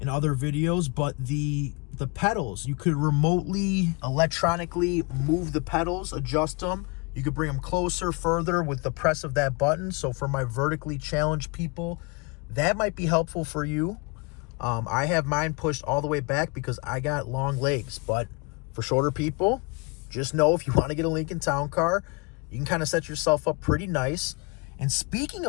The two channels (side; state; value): right; quieter; 29.7 dB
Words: other videos, but the pedals, you could remotely, electronically move the pedals, adjust them. You could bring them closer, further with the press of that button. So for my vertically challenged people, that might be helpful for you. I have mine pushed all the way back because I got long legs, but for shorter people, just know if you want to get a Lincoln Town Car, you can kind of set yourself up pretty nice. And speaking